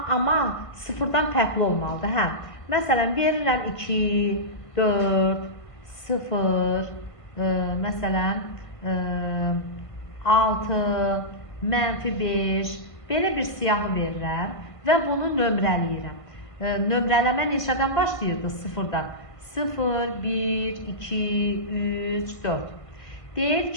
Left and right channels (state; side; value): late; right; 1.5 ms